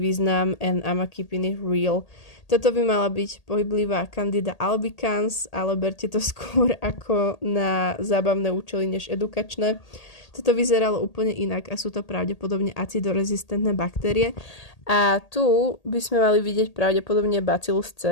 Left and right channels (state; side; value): late; right; 1.8 ms